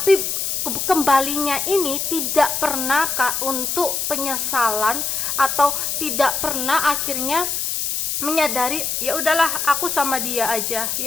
kembalinya ini tidak pernah untuk penyesalan, atau tidak pernah akhirnya menyadari ya udahlah aku sama dia aja,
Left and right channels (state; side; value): noise; left; hiss, 1 dB below the sound